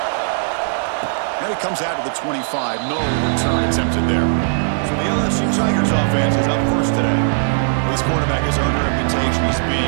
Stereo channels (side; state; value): left; silent; 67 dB below the other